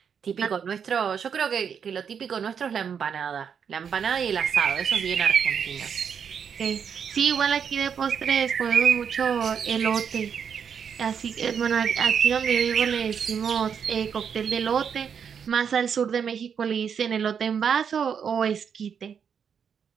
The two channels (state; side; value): quieter; left; 7.2 dB